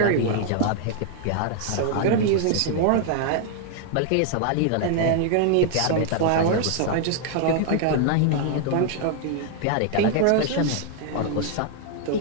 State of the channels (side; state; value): both; different; correlation 0.00